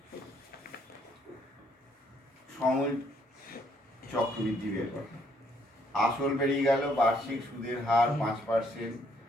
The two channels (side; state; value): both; normal; correlation 0.69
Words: সময় চক্রবৃদ্ধি বের কর। আসল বেরিয়ে গেল, বার্ষিক সুদের হার 5%,